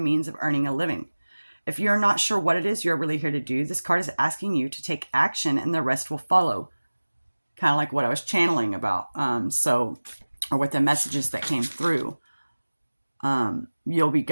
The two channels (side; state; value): both; inverted; correlation -1.00